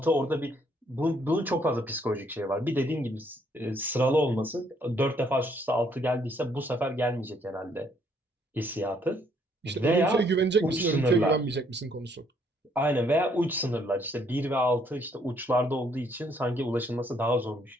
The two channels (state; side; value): normal; both; correlation 0.68